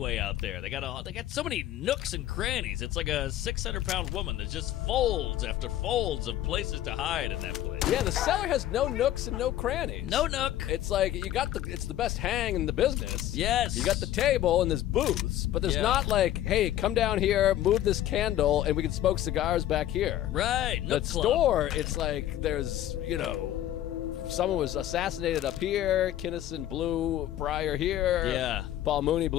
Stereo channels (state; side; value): quieter; right; 12.8 dB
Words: out there. They got so many nooks and crannies. It's like a 600-pound woman. There's just folds after folds of places to hide in that place. Yeah, the cellar has no nooks and no crannies. No nook. It's like it's the best hang in the business. Yes. You got the table and there's booths, but there's not like, hey, come down here, move this candle, and we can smoke cigars back here. Right. The Nook club. store, it's like there's, someone was assassinated up here, Kinnison blew Pryor here. Yeah. Paul Mooney